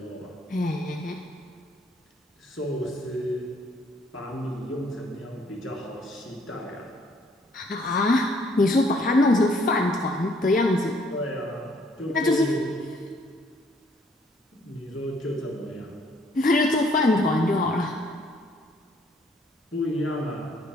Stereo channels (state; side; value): normal; both; correlation 0.64